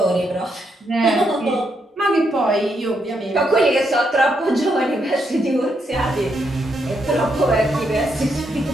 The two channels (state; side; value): normal; both; correlation 0.79